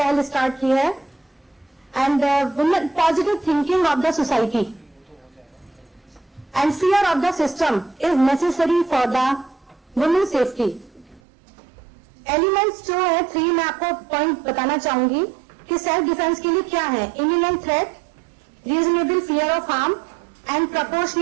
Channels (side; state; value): left; drops out; at 11.2 s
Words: स्टार्ट की है। And positive thinking of the society and fear of the system is necessary for the women's safety. Elements जो है 3 मैं आपको पॉइंट बताना चाहूंगी कि सेल्फ डिफेंस के लिए क्या है। imminent threat, reasonable fear of harm and